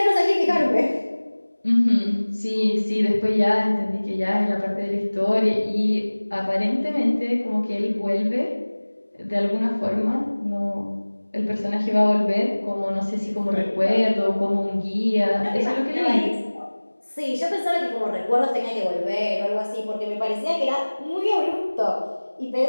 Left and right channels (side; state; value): both; inverted; correlation -1.00